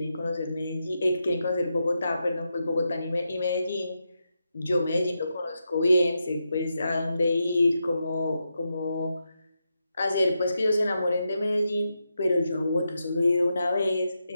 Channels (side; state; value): both; inverted; correlation -0.86